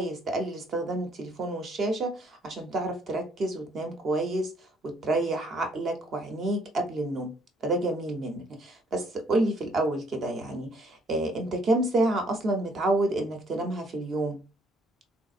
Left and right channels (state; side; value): normal; both; correlation 0.65